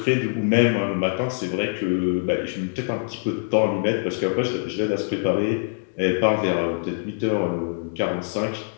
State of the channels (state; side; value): silent; right; digital silence